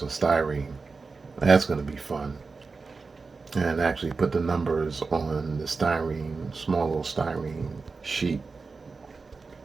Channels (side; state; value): left; quieter; 4.3 dB